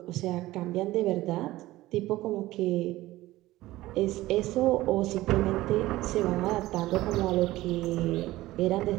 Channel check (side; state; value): left; quieter; 17.2 dB